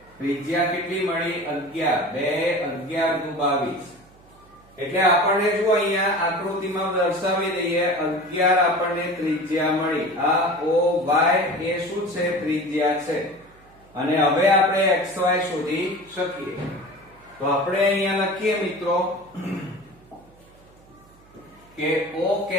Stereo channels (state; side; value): noise; right; hum, 28 dB below the sound